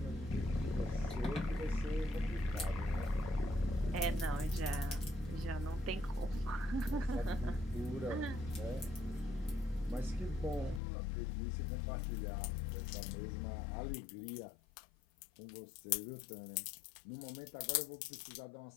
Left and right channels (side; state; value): right; drops out; at 10.8 s